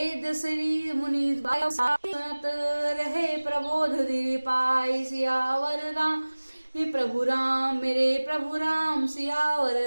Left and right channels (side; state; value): both; inverted; correlation -1.00